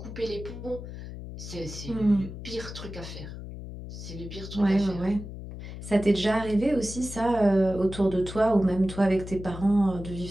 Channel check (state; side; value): noise; left; hum, 10 dB below the sound